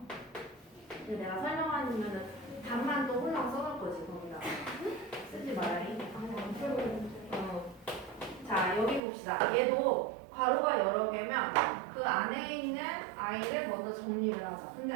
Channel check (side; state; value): left; drops out; at 9.0 s